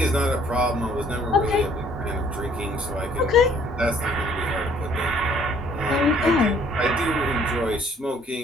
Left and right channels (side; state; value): both; normal; correlation 0.60